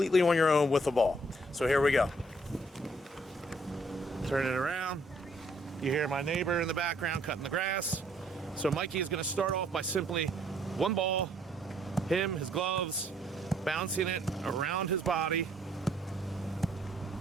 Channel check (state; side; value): normal; both; correlation 0.65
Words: on your own with the ball. So here we go. Turn it around. You hear my neighbor in the background cutting the grass. So Mikey is going to start off by simply one ball, him, his gloves, bouncing it around his body.